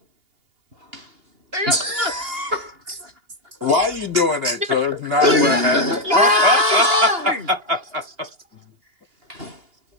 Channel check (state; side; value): late; left; 2.8 ms